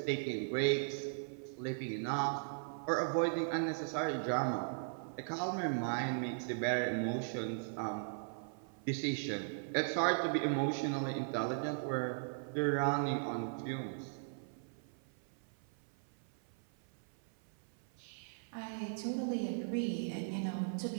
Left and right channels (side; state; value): left; silent; 52 dB below the other